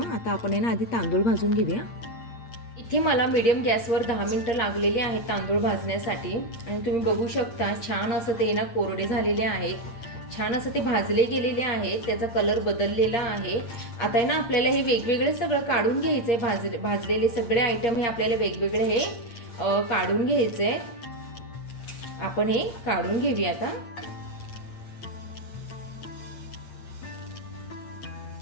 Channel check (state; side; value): late; right; 8.6 ms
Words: आता आपण आहे ना आधी तांदूळ भाजून घेऊया. इथे मला मीडियम गॅसवर 10 मिनटं लागलेली आहेत तांदूळ भाजण्यासाठी आणि तुम्ही बघू शकता छान असं ते ना कोरडे झालेले आहेत, छान असं ते भाजले गेलेले आहेत, त्याचा कलर बदललेला आहे. आता आहे ना आपल्याला हे वेगवेगळे सगळं काढून घ्यायचं आहे. भाजलेले सगळे आयटम हे आपल्याला वेगवेगळे हे काढून घ्यायचे आहे. आपण हे काढून घेऊया आता.